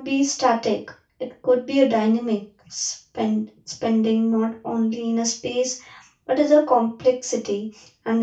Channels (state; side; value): identical; both; correlation 1.00